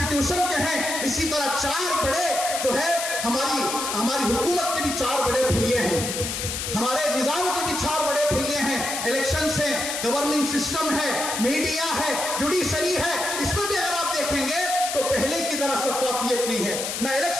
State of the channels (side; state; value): left; noise; hiss, 3 dB below the sound